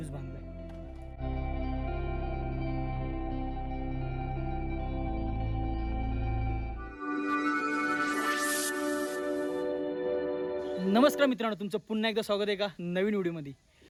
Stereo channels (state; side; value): identical; both; correlation 1.00